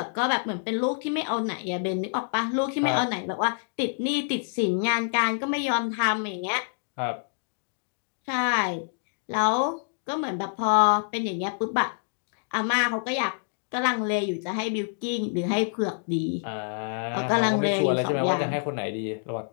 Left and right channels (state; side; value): silent; right; digital silence